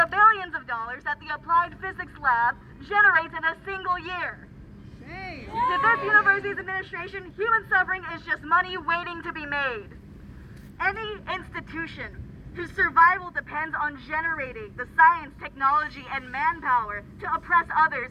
billions of dollars that the Applied Physics Lab generates in a single year. To this university's administration, human suffering is just money waiting to be made. Any institution whose survival depends on generating the science, technology, and manpower to oppress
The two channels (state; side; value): identical; both; correlation 1.00